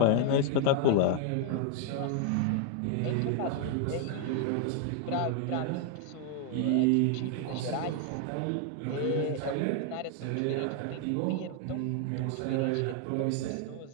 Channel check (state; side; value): different; both; correlation 0.00